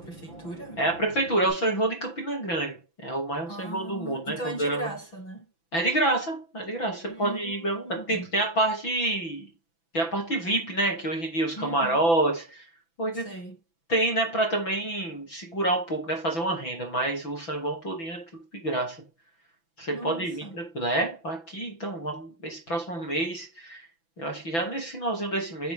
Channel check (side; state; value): right; late; 6.0 ms